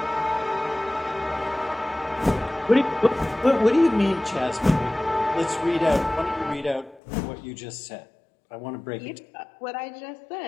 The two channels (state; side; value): drops out; right; at 7.0 s